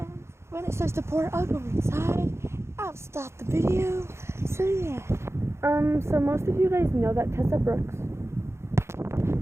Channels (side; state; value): left; late; 0.13 ms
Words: when it starts to pour, I'll go inside. I'll stop the video. So yeah. So most of you guys know that Tessa Brooks